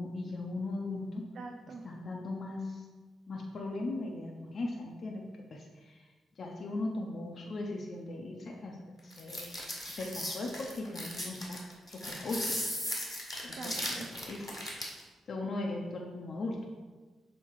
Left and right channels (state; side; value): normal; both; correlation 0.84